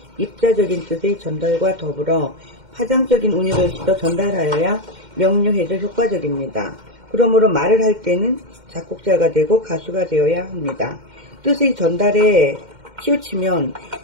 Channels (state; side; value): late; left; 2.1 ms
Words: 입자적인 뜻의 전달과 더불어 파장적인 운율을 싣어 전달하여야 명료해져 효과적입니다. 그러므로 말을 할 때는 작곡자가 되고 가수가 되어야 합니다. 뜻의 전달에 치우치면